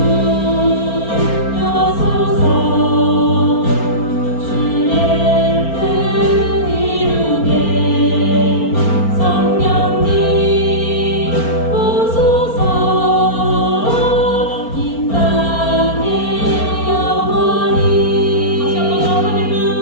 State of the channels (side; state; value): right; late; 4.4 ms